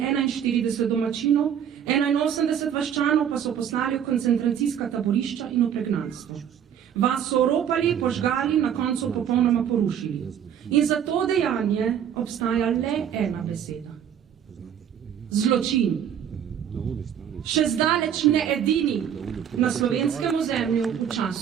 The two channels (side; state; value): left; quieter; 9.0 dB